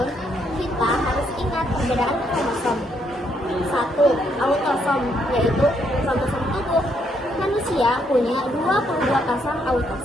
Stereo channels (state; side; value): normal; both; correlation 0.73